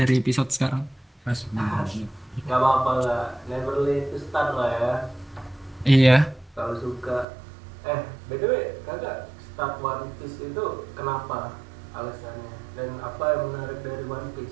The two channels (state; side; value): drops out; left; at 7.2 s